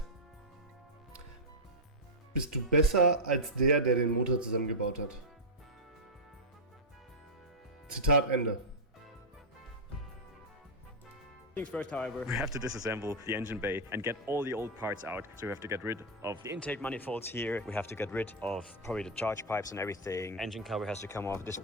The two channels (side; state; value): both; normal; correlation -0.04